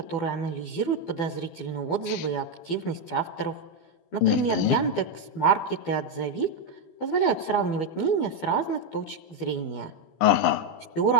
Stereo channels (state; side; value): late; right; 12 ms